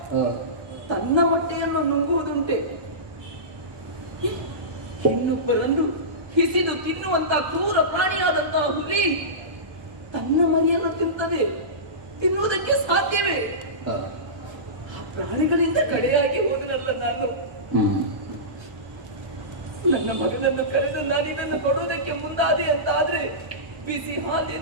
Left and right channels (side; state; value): left; late; 1.3 ms